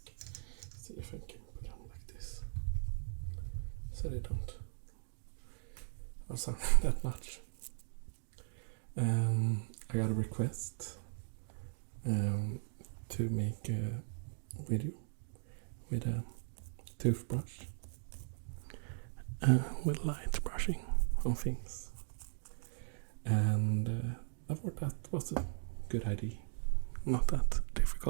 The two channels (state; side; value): silent; left; digital silence